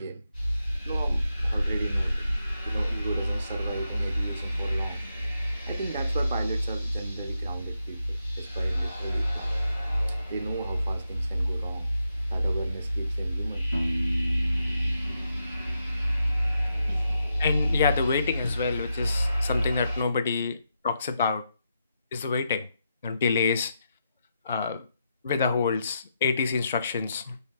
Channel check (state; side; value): inverted; both; correlation -0.83